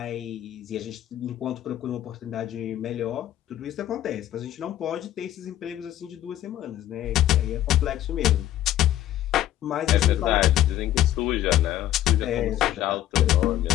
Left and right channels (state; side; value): quieter; right; 12.9 dB